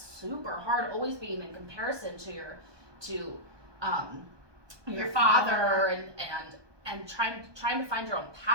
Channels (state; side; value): late; left; 1.2 ms